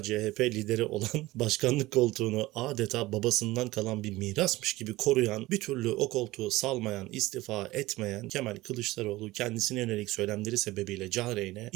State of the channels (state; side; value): quieter; left; 18.8 dB